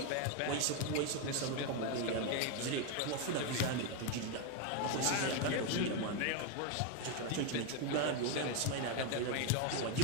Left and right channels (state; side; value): different; both; correlation 0.02